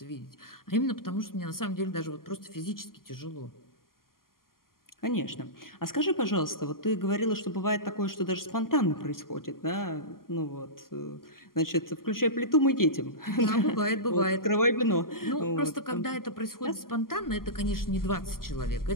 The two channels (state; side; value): late; right; 0.92 ms